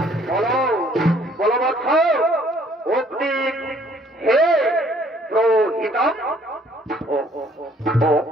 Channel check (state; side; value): normal; both; correlation 0.61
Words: বলো বলো বৎস। অগ্নি হে প্রহিতম,